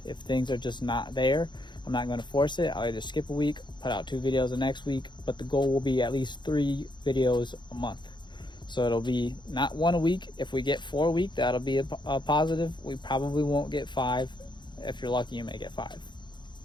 if things are just not there, I'm not going to force it. I'll either skip a week, put out 2 videos the next week, but the goal will be at least 3 videos a month. So it'll be not 1 a week. If we get 4 a week, that'll be a positive. We probably won't get 5. If you're lucky, you may get 5.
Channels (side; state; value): right; late; 0.22 ms